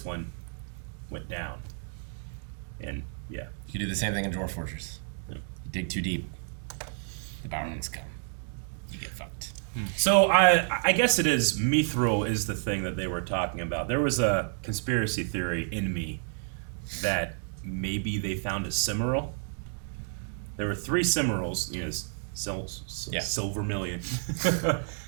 one went down. And yeah. You do the same thing in Dwarf Fortress. You dig too deep, the Balrogs come. You get fucked. So I guess it is Mithril is the thing that they were talking about. There was a conspiracy theory in me that maybe they found a Cimmeral. There were 3 Cimmerals, you know, Silvermillion.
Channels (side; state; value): left; silent; digital silence